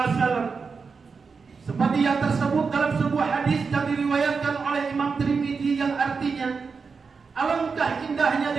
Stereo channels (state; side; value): quieter; left; 5.1 dB